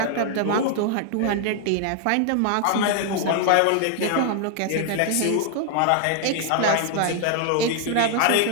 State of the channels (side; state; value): both; different; correlation 0.00